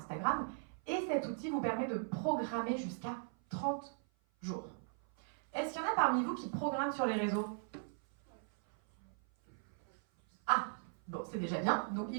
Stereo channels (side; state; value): left; silent; 52 dB below the other